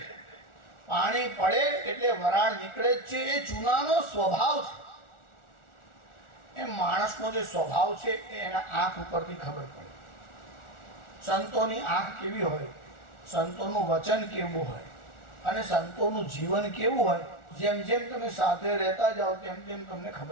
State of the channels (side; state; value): right; late; 1.4 ms